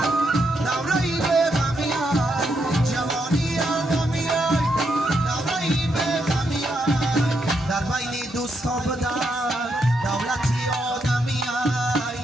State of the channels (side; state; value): both; normal; correlation 0.79